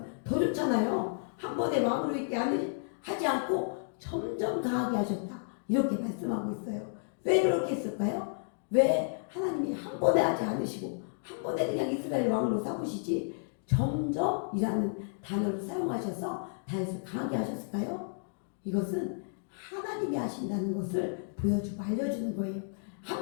더 좋잖아요. 한 번에 왕으로 있게 하지 않고 점점 강하게 하셨다. 이렇게 말씀하고 있어요. 왜 그렇게 했을까요? 왜 하나님이 한 번에 하지 않으시고 한 번에 그냥 이스라엘 왕으로 삼으시지 점점이라는 단어를 사용하셔서 다윗을 강하게 하셨을까요? 이것은 하나님이 하신다는 것을 보여주고 알려주는 거예요.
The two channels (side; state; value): right; silent; digital silence